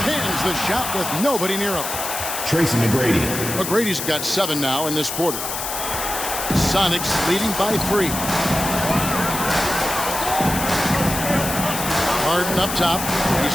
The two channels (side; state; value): left; noise; hiss, 5 dB below the sound